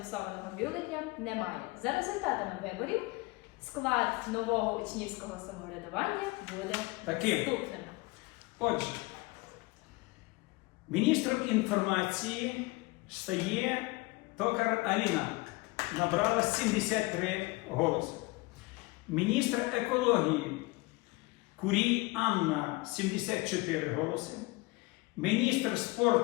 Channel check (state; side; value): quieter; right; 23.2 dB